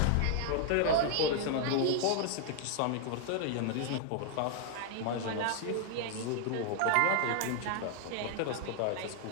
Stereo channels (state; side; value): different; both; correlation 0.00